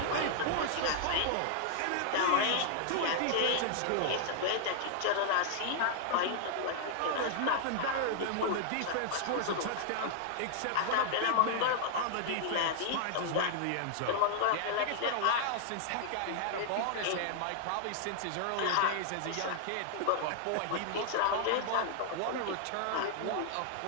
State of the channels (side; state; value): both; different; correlation 0.00